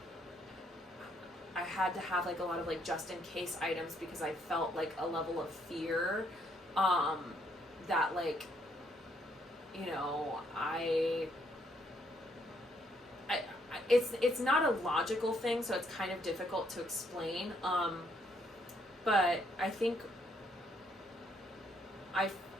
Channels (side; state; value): both; normal; correlation 0.71